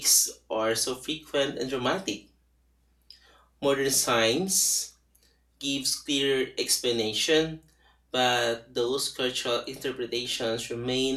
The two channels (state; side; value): identical; both; correlation 1.00